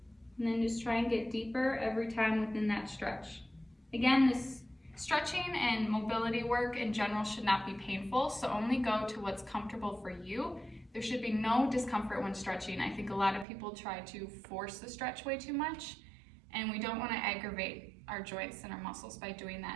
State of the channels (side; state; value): left; drops out; at 13.5 s